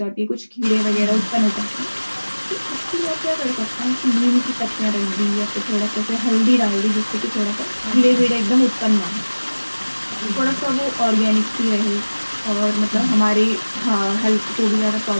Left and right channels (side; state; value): both; inverted; correlation -1.00